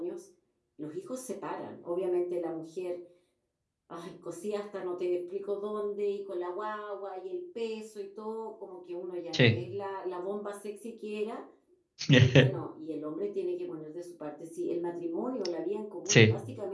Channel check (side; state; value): both; identical; correlation 1.00